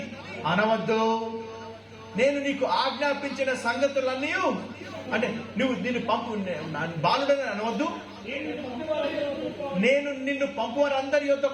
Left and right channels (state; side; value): identical; both; correlation 1.00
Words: అనవద్దు, నేను నీకు ఆజ్ఞాపించిన సంగతులన్నీ, అంటే నువ్వు నిన్ను పంపు బాలుడని అనవద్దు, నేను నిన్ను పంపువారు అందరి